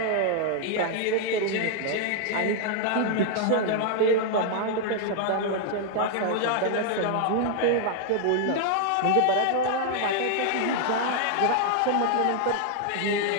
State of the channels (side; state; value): both; different; correlation 0.00